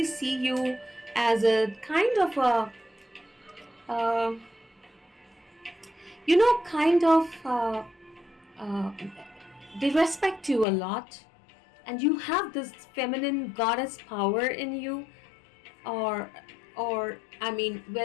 see you as a kind of a, they respect you a lot, and you have this feminine goddess power in you, or I mean,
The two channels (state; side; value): drops out; right; at 10.7 s